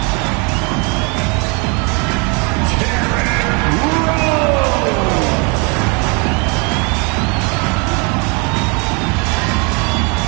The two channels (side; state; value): left; quieter; 32.1 dB